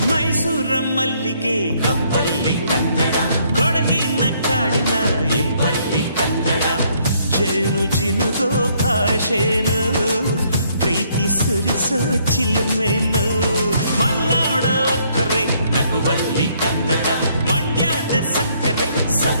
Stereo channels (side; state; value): both; inverted; correlation -0.68